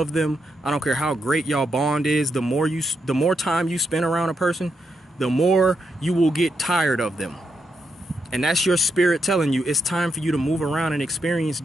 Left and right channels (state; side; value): normal; both; correlation 0.82